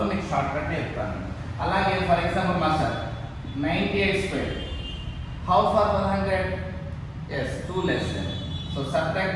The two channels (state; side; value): identical; both; correlation 1.00